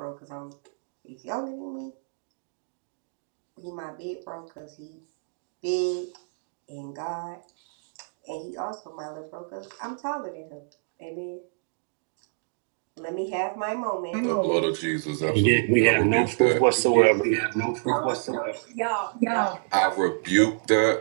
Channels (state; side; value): silent; left; digital silence